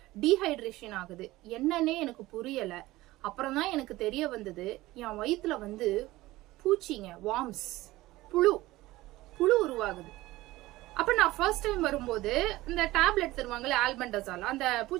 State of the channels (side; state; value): left; quieter; 18.0 dB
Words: டீஹைட்ரேஷன் ஆகுது. என்னன்னே எனக்கு புரியல. அப்புறம் தான் எனக்கு தெரிய வந்தது, என் வயிற்றுல பூச்சிங்க, வார்ம்ஸ், புழு உருவாகுது. அப்ப நான் ஃபர்ஸ்ட் டைம் வரும்போது இந்த டேப்லெட் தருவாங்கல்ல, ஆல்பெண்டசால், அந்த